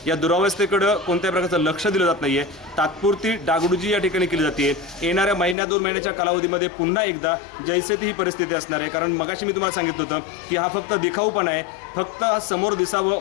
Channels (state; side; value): drops out; right; at 5.6 s